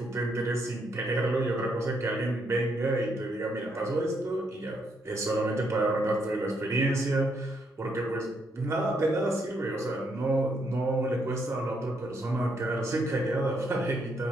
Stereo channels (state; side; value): normal; both; correlation 0.75